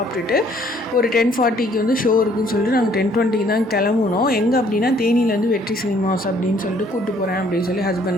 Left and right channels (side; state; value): both; normal; correlation 0.62